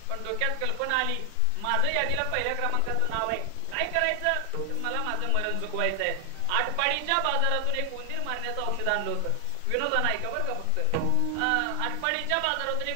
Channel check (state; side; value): different; both; correlation 0.00